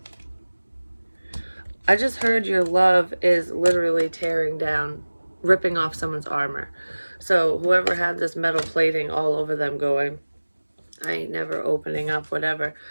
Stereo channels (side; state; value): both; inverted; correlation -1.00